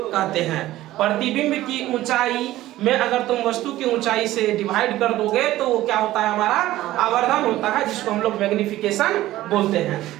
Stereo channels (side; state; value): left; quieter; 15.5 dB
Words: हैं। प्रतिबिंब की ऊंचाई में अगर तुम वस्तु की ऊंचाई से डिवाइड कर दोगे तो वो क्या होता है, हमारा आवर्धन होता है, जिसको हम लोग मैग्निफिकेशन बोलते हैं।